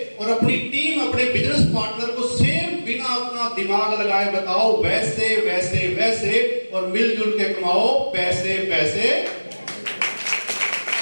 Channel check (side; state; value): both; inverted; correlation -1.00